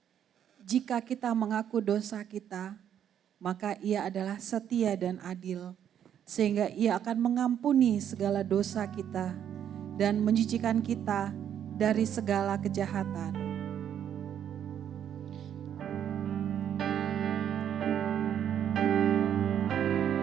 jika kita mengaku dosa kita, maka Ia adalah setia dan adil, sehingga Ia akan mengampuni segala dosa kita dan mencucikan kita dari segala kejahatan.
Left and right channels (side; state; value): left; quieter; 9.5 dB